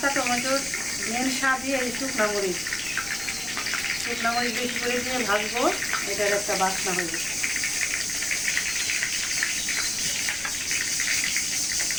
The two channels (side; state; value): left; noise; rumble, 19 dB below the sound